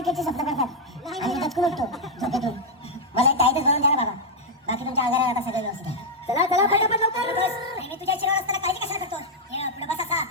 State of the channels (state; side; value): normal; both; correlation -0.03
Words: स्वप्न करतात आणि दचकून उठतो झोपेतून. मला एक टाईटच भरून द्या ना बाबा. बाकी तुमच्या आजारात आता सगळं व्यवस्थित आहे. चला चला पटापट लवकर बस. मी तुझ्या शिरावर असताना काळजी कशाला करतो. पुढे बस असा